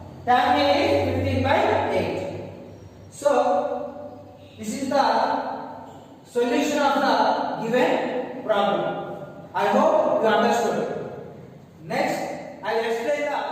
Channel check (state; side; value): identical; both; correlation 1.00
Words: tan A is 15 by 8. So this is the solution of the given problem. I hope you understood. Next, I will explain